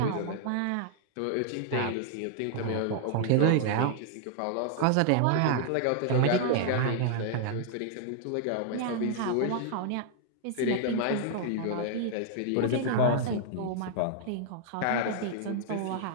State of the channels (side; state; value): both; different; correlation -0.01